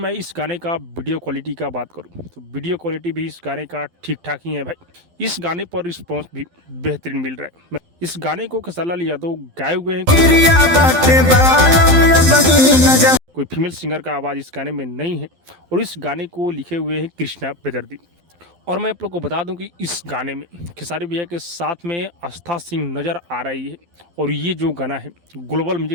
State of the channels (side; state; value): left; late; 12 ms